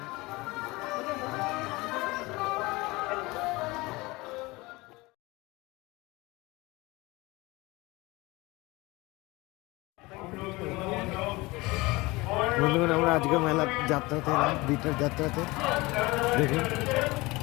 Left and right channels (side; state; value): right; quieter; 22.5 dB